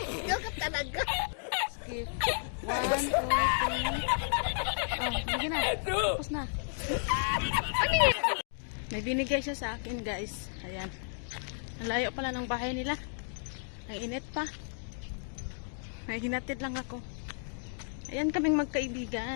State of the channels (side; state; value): right; silent; digital silence